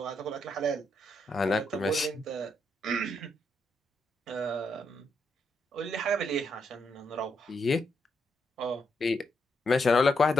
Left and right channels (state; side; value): normal; both; correlation 0.79